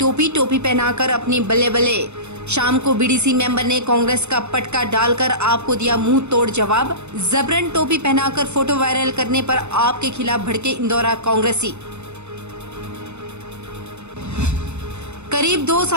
पहनाकर अपनी बल्ले बल्ले। शाम को बीडीसी मेंबर ने कांग्रेस का पटका डालकर आपको दिया मुंह तोड़ जवाब। जबरन टोपी पहनाकर फोटो वायरल करने पर आपके खिलाफ भड़के इंदौरा कांग्रेसी। करीब 2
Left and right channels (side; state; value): left; late; 0.82 ms